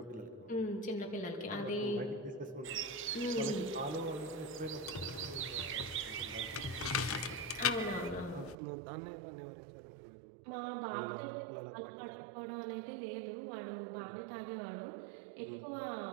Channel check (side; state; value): left; drops out; at 8.6 s